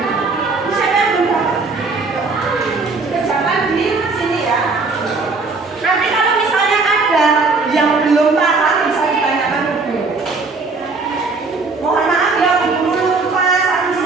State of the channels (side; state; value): left; quieter; 4.0 dB